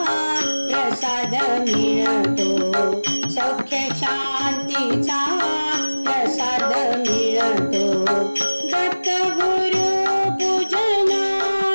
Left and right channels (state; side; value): inverted; both; correlation -1.00